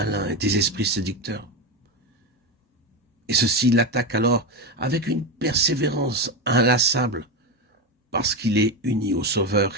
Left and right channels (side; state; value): both; normal; correlation 0.15